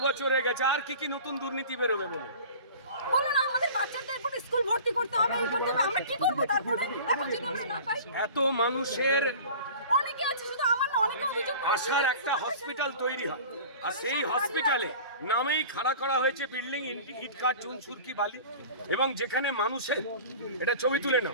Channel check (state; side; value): inverted; both; correlation -0.40